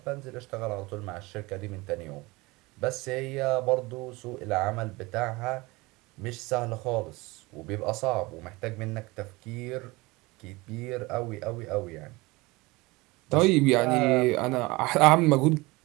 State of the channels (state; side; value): quieter; left; 22.8 dB